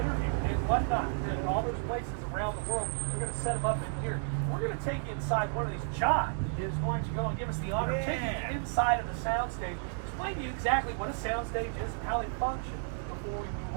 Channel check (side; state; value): left; silent; 56 dB below the other